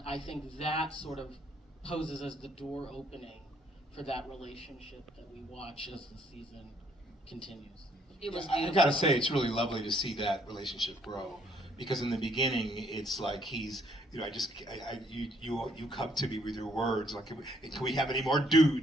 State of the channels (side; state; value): both; normal; correlation 0.67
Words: I think that sort of poses as the door opening for that relationship that we watch as the season continues. It was I gotta say, it's really lovely to see that relationship grow. Because in the beginning, it's like he's, you know, you come to me with your words, like, can we have any more